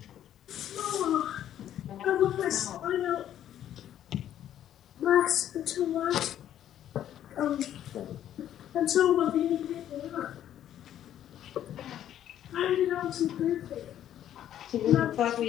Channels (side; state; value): right; quieter; 11.1 dB